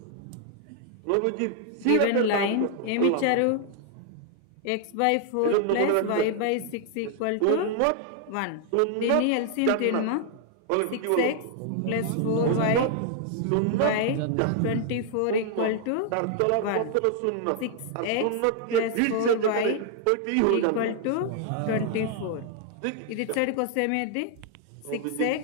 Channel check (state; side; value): different; both; correlation 0.00